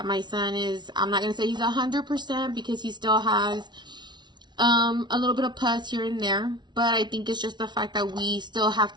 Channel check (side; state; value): left; late; 0.21 ms